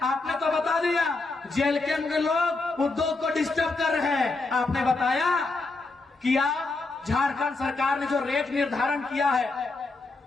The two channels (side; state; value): right; quieter; 3.5 dB